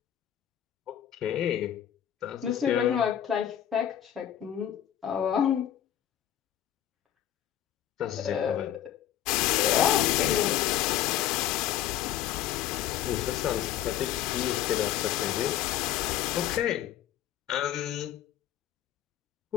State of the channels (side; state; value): right; quieter; 11.1 dB